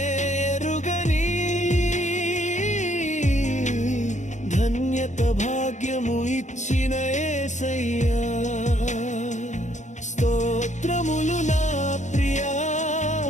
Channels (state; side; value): late; right; 0.35 ms